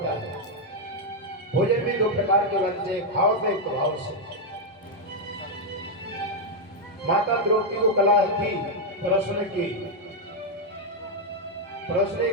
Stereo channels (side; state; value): both; normal; correlation 0.00